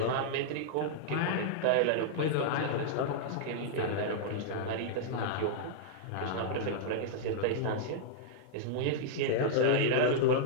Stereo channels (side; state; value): both; different; correlation -0.02